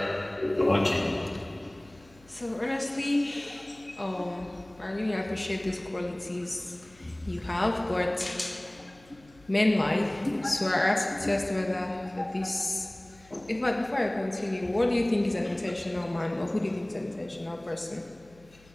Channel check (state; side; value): noise; left; hum, 27 dB below the sound